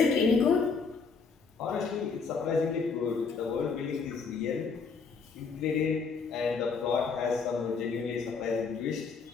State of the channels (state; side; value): quieter; right; 5.1 dB